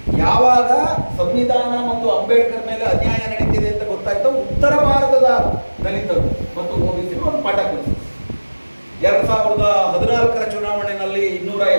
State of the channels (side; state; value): both; inverted; correlation -1.00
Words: ಯಾವಾಗ ಸಂವಿಧಾನ ಮತ್ತು ಅಂಬೇಡ್ಕರ್ ಮೇಲೆ ಅನ್ಯಾಯ ನಡೀತಿದೆ ಅಂತ ಗೊತ್ತಾಯ್ತು, ಉತ್ತರ ಭಾರತದ ದಲಿತರು ಮತ್ತು ಓಬಿಸಿಗಳು ಒಂದು ಪಾಠ ಕಲಿಸಿದ್ರು. 2014 ಚುನಾವಣೆಯಲ್ಲಿ